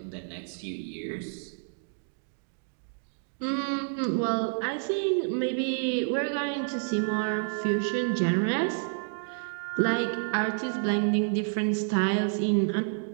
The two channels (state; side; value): silent; left; digital silence